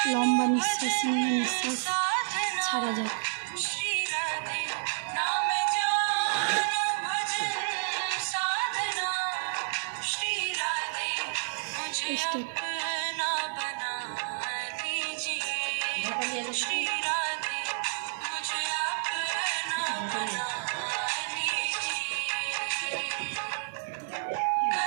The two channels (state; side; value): silent; left; digital silence